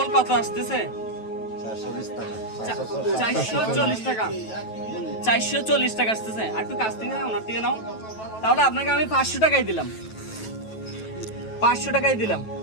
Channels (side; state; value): right; late; 9.2 ms